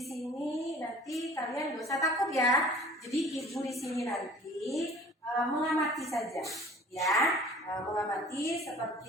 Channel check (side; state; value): both; normal; correlation 0.47